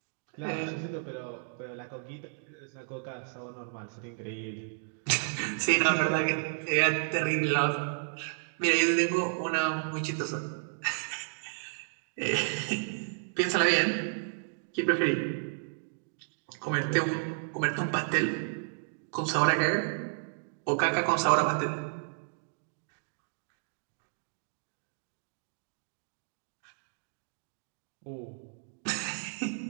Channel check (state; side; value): silent; left; digital silence